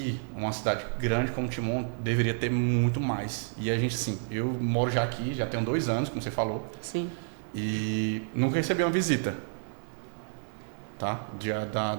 uma cidade grande como Timon, deveria ter muito mais. E a gente, sim, eu moro já aqui, já tenho 2 anos, como você falou. Sim. E nunca recebi uma visita, tá?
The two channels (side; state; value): left; silent; digital silence